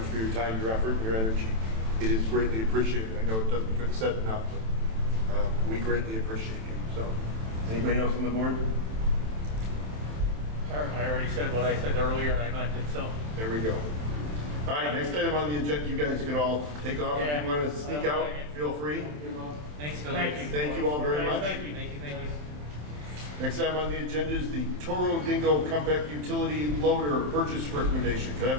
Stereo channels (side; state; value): left; late; 27 ms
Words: for your time, your effort, and your energy. It is greatly appreciated. I know it doesn't get said enough, but we greatly appreciate you. So, anybody else on the board? I already said what I said earlier, and I meant it, so. There we go. All right, next item on the agenda, you guys can all take off. If you want to sneak out, feel free. Thanks, Billy. Thank you. Thank you all very much. Thank you, thank you, thank you. Next item on the agenda is the Toro Dingo Compact Utility Loader Purchase Recommendation. Could I